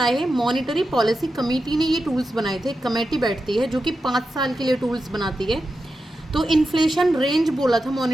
हैं? मॉनेटरी पॉलिसी कमेटी ने ये टूल्स बनाए थे। कमेटी बैठती है जो कि 5 साल के लिए टूल्स बनाती है। तो इन्फ्लेशन रेंज बोला था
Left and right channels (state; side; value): normal; both; correlation 0.90